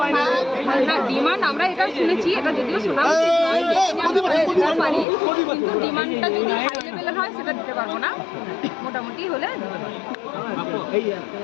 না না ডিমান্ড আমরা এটা শুনেছি, এটা যদিও শোনা উচিত নয়, দিতে পারি, কিন্তু ডিমান্ডটা যদি হাই লেভেলের হয় সেটা দিতে পারবো না, মোটামুটি হলে দিতে পারবো। এই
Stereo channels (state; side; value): drops out; right; at 5.1 s